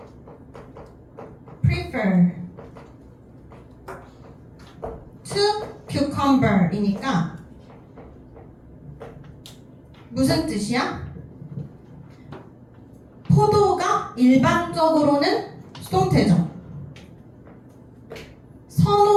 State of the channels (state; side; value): identical; both; correlation 1.00